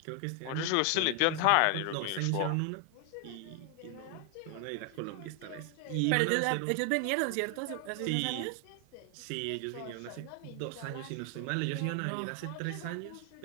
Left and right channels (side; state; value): both; different; correlation 0.00